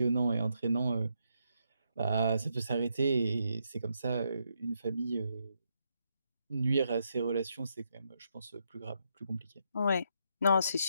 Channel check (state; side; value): inverted; both; correlation -0.79